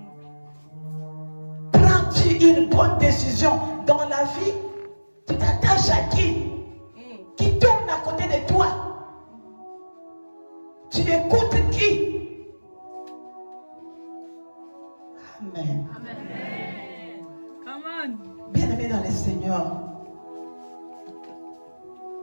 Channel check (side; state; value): both; inverted; correlation -1.00